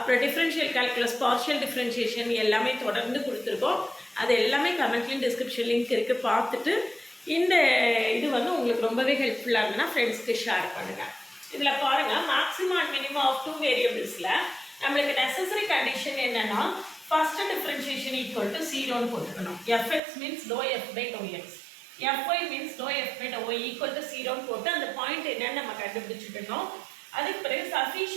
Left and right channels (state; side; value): drops out; left; at 20.0 s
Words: டிஃப்ரென்ஷியல் கால்குலஸ், பார்ஷியல் டிஃப்ரென்ஷியேஷன் எல்லாமே தொடர்ந்து கொடுத்துருக்கோம். அது எல்லாமே கமெண்ட்லேயும் டிஸ்கிரிப்ஷன் லிங்க் இருக்குது, பார்த்துட்டு இந்த இது வந்து உங்களுக்கு ரொம்பவே ஹெல்ப்ஃபுல்லாக இருந்ததுன்னா ஃப்ரெண்ட்ஸ்க்கு ஷேர் பண்ணுங்கள். இதில் பாருங்கள், மேக்ஸிமம் அண்ட் மினிமம் ஆஃப் 2 வேரியபிள்ஸில் நம்மளுக்கு நெசசரி கண்டிஷன் என்னென்னா ஃபஸ்ட்டு டிஃப்ரென்ஷியேஷன் ஈக்குவல் டு 0ன்னு போட்டுக்கணும். F X means do F by do X, F Y means do F by do Y equal to 0ன்னு போட்டு அந்த பாயிண்ட் என்னன்னு நம்ம கண்டுபிடிச்சிக்கணும். அதுக்கு பிறகு